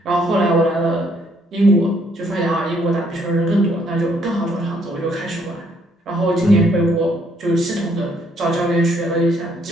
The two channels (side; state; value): both; normal; correlation 0.68